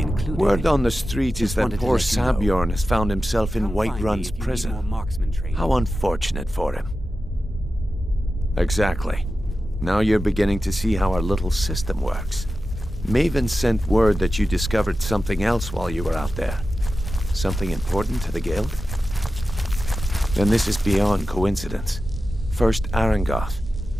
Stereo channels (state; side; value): normal; both; correlation 0.93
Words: included. Word on the street is that wanted to poor let you know. Sabjorn has found himself in Come White find me Run's if you need prison. more marksman training. How unfortunate for him. Exactly. Now you're beginning to see how our little system works. Maven sent word that you discovered something else while you were out there. Something important to the guild? And this is beyond coincidence. First Arangoth,